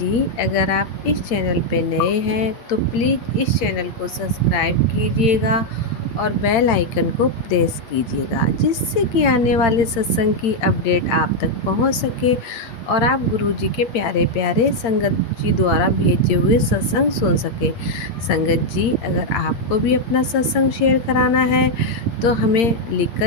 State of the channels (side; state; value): right; late; 8.7 ms